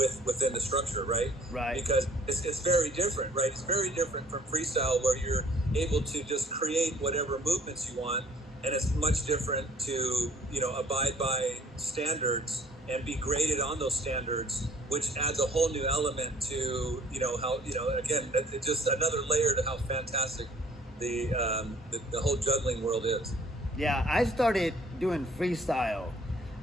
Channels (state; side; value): normal; both; correlation 0.56